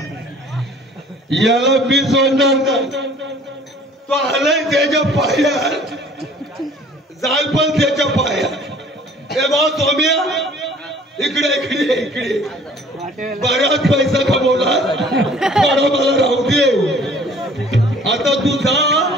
याला मी सोडणार. तो आलाय त्याच्या पायात जाल पण त्याच्या पायात. हे बा सोम्या इकडे बराच पैसा कमवला. थोडा मला राहू दे. आता तू जा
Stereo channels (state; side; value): normal; both; correlation 0.52